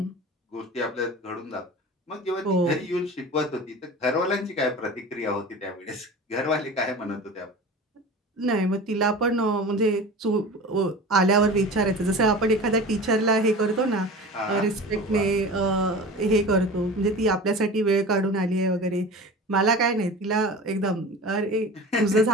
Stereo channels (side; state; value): both; normal; correlation 0.35